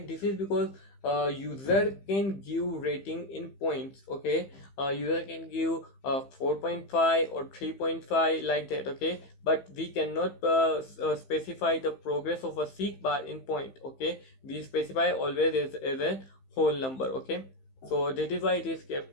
This is because user can give rating in points. Okay, user can give 4.5 or 3.5 like that. Okay, but we cannot specify the progress of a SeekBar in point. Okay, we specify always as a whole number. Okay, so that is why it is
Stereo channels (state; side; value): late; right; 15 ms